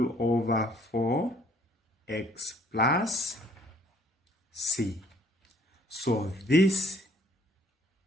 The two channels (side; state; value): both; normal; correlation 0.60